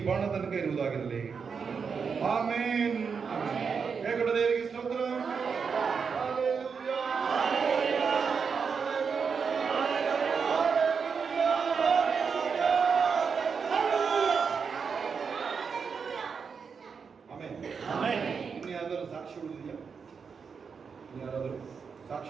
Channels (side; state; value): left; quieter; 5.9 dB